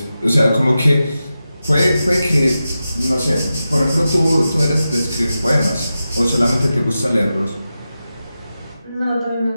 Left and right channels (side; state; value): both; inverted; correlation -0.92